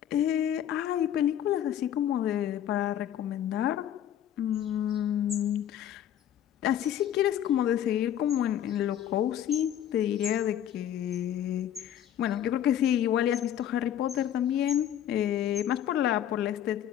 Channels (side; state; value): right; quieter; 10.6 dB